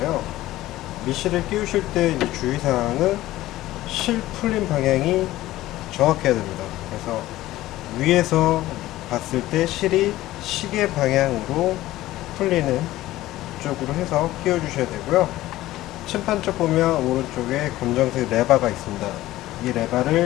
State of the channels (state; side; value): quieter; right; 16.0 dB